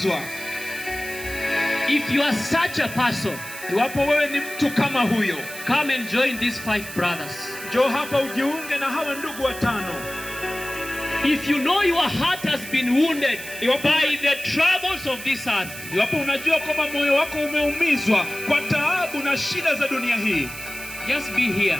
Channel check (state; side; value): noise; right; hiss, 12 dB below the sound